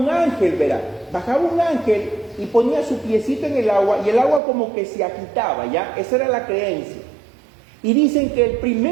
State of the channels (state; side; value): drops out; left; at 4.4 s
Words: ángel, verá, bajaba un ángel y ponía su piecito en el agua, y el agua como que se agitaba, ¿ya? Esa era la creencia. Y dicen que el